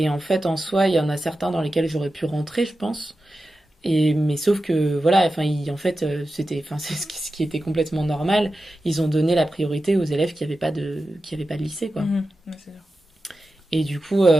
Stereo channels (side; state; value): both; normal; correlation 0.92